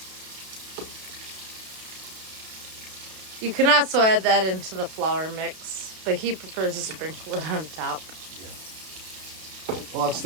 You can also add that into the flour mix, but he prefers to sprinkle it on top. Yeah. Well, that's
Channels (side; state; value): left; late; 32 ms